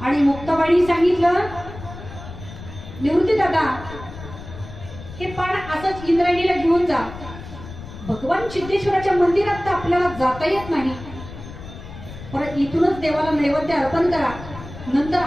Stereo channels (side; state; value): left; noise; rumble, 13 dB below the sound